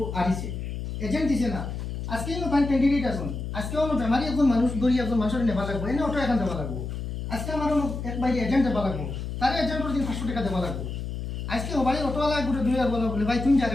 আরিছে এজেন্ট দিছে না আজকে ফাইন ক্যান্ডিডেট আছেন আজকে অন্য বেমারি একজন মানুষ ধরি একজন মানুষের নেবা লাগবো এনে অটো এখান দেওয়া লাগবো আজকে আমার এক বাইরে এজেন্ট দেওয়া লাগবো তার এজেন্টের দিন 500 টাকা দেওয়া লাগবো আজকে ওবারে অটোওয়ালা গোটে 2000 বলে ভাই তুমি যাবে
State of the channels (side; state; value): left; noise; hum, 5 dB below the sound